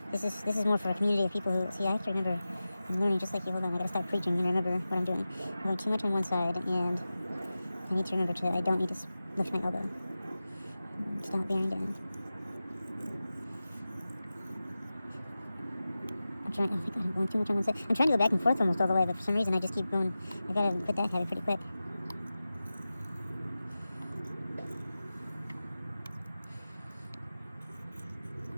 this is more for a community of people who, see, I have to remember, I'm learning just like you, hold on, I got to stop preaching and remember what I'm doing. I'm going too much on one side, and I need to remember I don't need to lift my elbow. Stop bearing down. Oh my god, I'm going too much on one side. I'm trying to go back and forth almost all the way, but for some reason I just keep going. I gotta quit that habit pretty quick.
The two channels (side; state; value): both; inverted; correlation -0.95